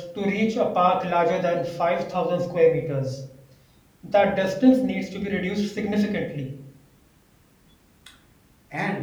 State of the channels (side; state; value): both; identical; correlation 1.00